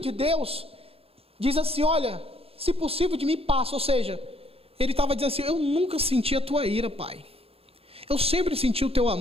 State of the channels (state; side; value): late; left; 0.28 ms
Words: Deus diz assim, olha, se possível de mim passa. Ou seja, ele estava dizendo assim, eu nunca senti a tua ira, Pai. Eu sempre senti o teu